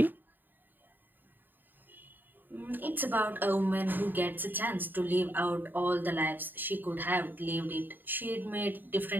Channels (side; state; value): left; late; 0.091 ms